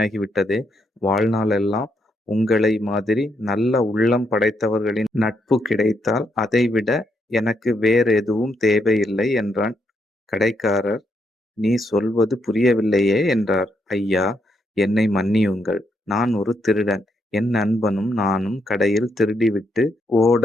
வாழ்நாளெல்லாம் உங்களை மாதிரி நல்ல உள்ளம் படைத்தவர்களின் நட்பு கிடைத்தால் அதைவிட எனக்கு வேறெதுவும் தேவையில்லை என்றான். கடைக்காரர், நீ சொல்வது புரியவில்லையே என்றார். ஐயா, என்னை மன்னியுங்கள். நான் ஒரு திருடன். என் நண்பனும் நானும் கடையில் திருடிவிட்டு ஓட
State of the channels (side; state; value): both; normal; correlation 0.78